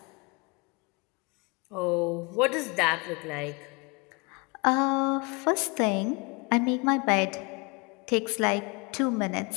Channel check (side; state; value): right; quieter; 29.5 dB